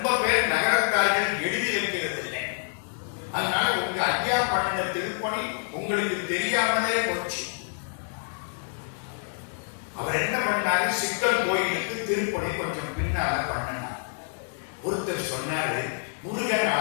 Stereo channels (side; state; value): right; silent; digital silence